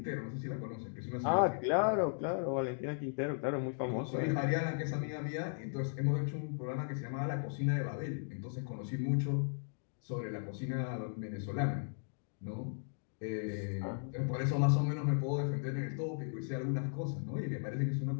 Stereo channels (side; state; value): right; silent; digital silence